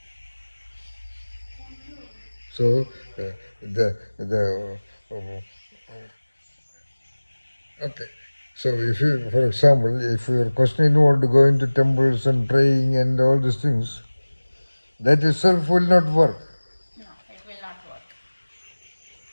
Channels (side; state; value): both; inverted; correlation -1.00